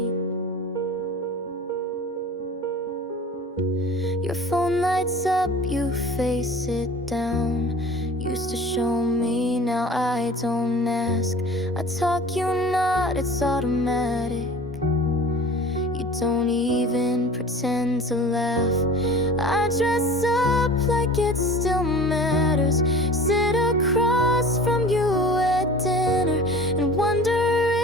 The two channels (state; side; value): normal; both; correlation 0.41